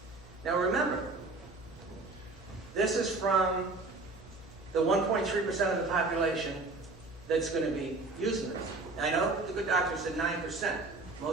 Now remember, this is from the 1.3% of the population that's going to be using this. I know the good doctor said 9%.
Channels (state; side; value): quieter; left; 3.4 dB